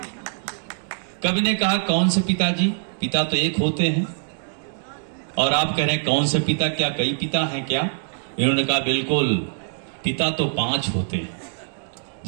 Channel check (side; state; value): left; silent; digital silence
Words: कवि ने कहा, कौन से पिताजी? पिता तो एक होते हैं। और आप कह रहे हैं कौन से पिता? क्या कई पिता हैं क्या? इन्होंने कहा, बिल्कुल, पिता तो 5 होते हैं।